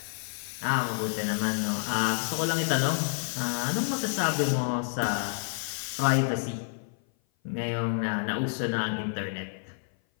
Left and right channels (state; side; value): silent; right; 56 dB below the other